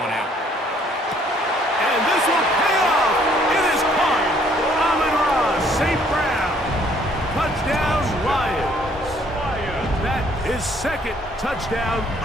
out. And this will pay off. It is caught. Amon-Ra St. Brown. Touchdown, Lions. That is 2nd touchdown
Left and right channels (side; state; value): both; normal; correlation 0.63